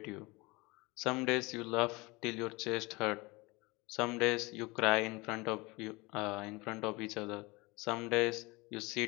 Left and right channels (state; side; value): quieter; right; 24.2 dB